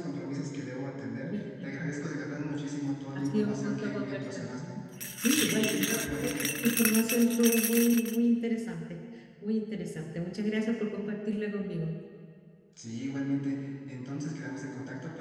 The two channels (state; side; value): identical; both; correlation 1.00